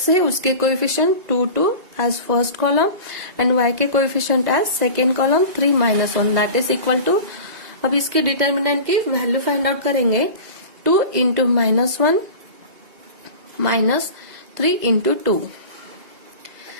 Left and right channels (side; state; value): left; late; 2.0 ms